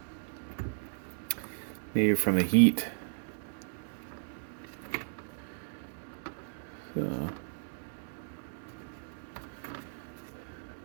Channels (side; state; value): left; silent; digital silence